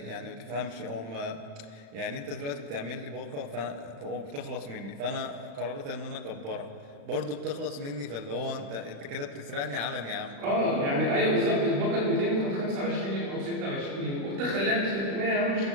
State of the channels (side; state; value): left; late; 35 ms